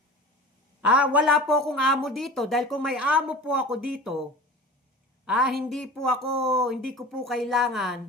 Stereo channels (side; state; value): both; normal; correlation 0.37